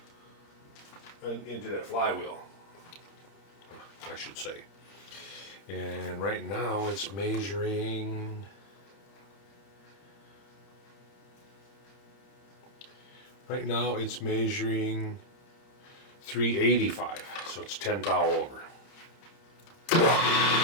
and into that flywheel, I should say. And right now it's measuring. Right now it's measuring 385, so it's 10 thou over. So we're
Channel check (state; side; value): late; right; 30 ms